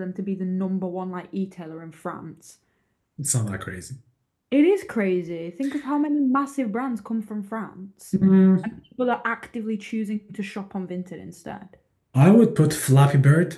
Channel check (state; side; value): identical; both; correlation 1.00